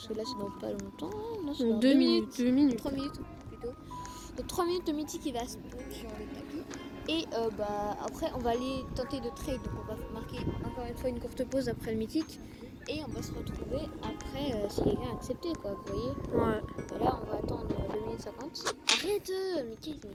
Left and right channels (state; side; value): identical; both; correlation 1.00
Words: que là, c'est dans pas longtemps. Non, c'est dans 2 minutes. 3 minutes plutôt. Donc 3 minutes, le mythique il va spawn sur le tapis. Et bah après on va aller tenter de trade. Donc on va marquer encore une fois une courte pause après le mythique. Et on va se retrouver après si quelqu'un a accepté quoi, vous voyez. Ouais. Et là on va attendre 2 minutes 50. Arrête mais qu'est-ce